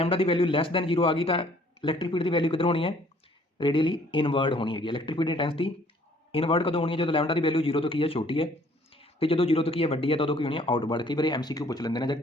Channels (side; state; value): both; normal; correlation 0.59